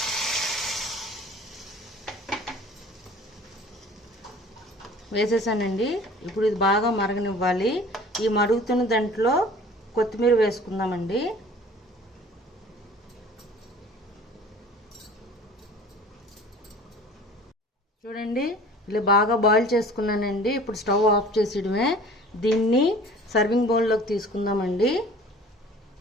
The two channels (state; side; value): normal; both; correlation 0.46